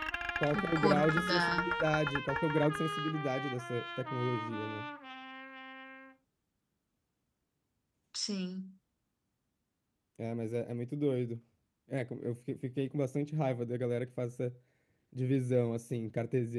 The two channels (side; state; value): both; identical; correlation 1.00